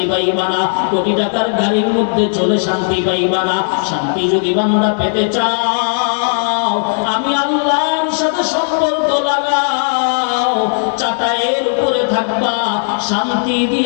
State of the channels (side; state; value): right; silent; digital silence